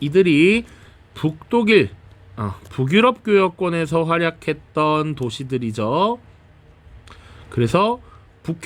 북독일, 북유럽 교역권에서 활약했던 도시들이죠. 그래서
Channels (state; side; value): identical; both; correlation 1.00